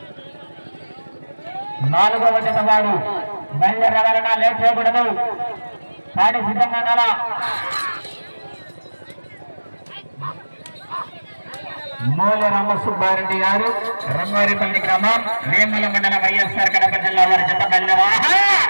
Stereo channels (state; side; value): inverted; both; correlation -1.00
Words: 4వ జత వారు బయలుదేరాలన్నా లేట్ చేయకూడదు. కాడి సిద్ధంగా ఉండాలా. మూల రామసుబ్బారెడ్డి గారు రంగారెడ్డి గ్రామం వేముల మండలం వైఎస్ఆర్ కడప జిల్లా వారి జత బయలుదేరా.